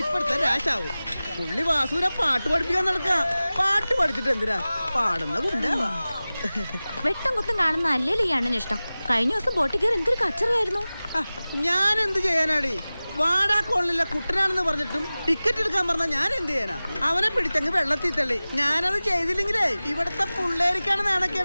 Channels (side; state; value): both; inverted; correlation -0.98